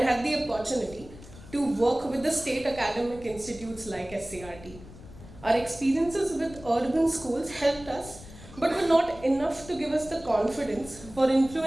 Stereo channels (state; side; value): noise; left; rumble, 18 dB below the sound